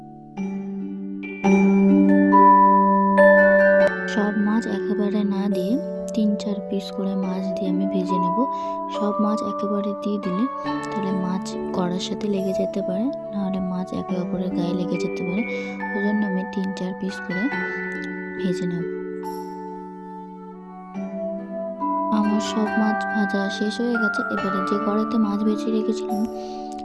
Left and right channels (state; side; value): identical; both; correlation 1.00